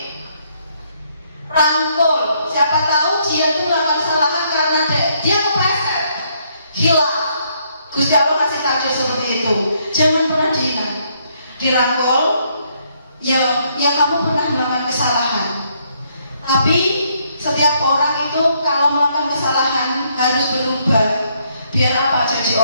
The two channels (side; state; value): both; inverted; correlation -0.72